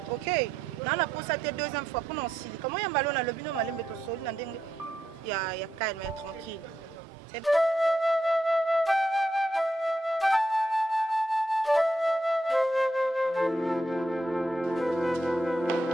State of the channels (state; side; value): normal; both; correlation 0.81